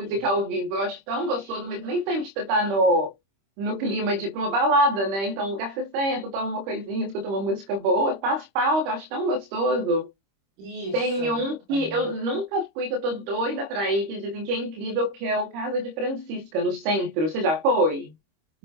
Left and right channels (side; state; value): left; late; 25 ms